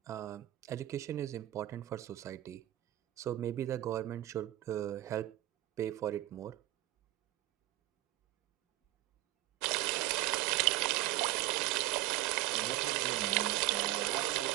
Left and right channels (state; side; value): quieter; left; 15.8 dB